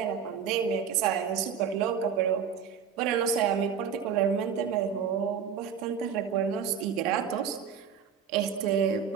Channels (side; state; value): left; quieter; 7.4 dB